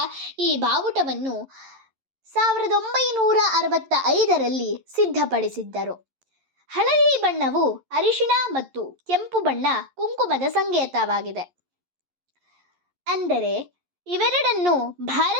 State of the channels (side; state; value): left; late; 11 ms